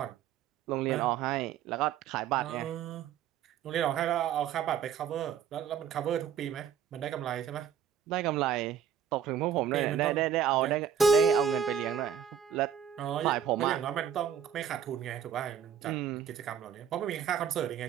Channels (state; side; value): quieter; left; 8.4 dB